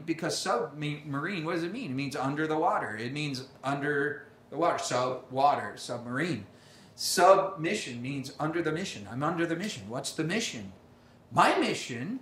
because submarine, what does it mean? It means under the water. It means under the water. Sub-water, submarine. Submission means under the mission. I'm under the mission. What's the mission? My mission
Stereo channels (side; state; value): both; identical; correlation 1.00